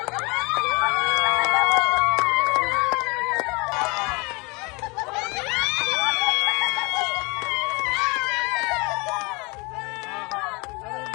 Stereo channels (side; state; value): right; quieter; 27.9 dB